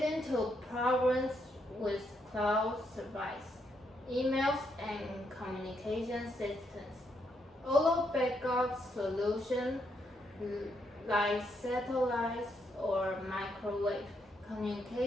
to problems with cloud service, emails, and communication systems. Although backup solutions like satellites or microwave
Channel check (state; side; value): normal; both; correlation 0.77